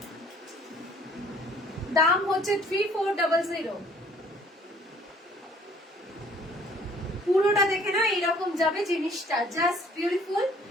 দাম হচ্ছে 3400। পুরোটা দেখে না এরকম যাবে জিনিসটা, জাস্ট বিউটিফুল।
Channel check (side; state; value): both; normal; correlation 0.57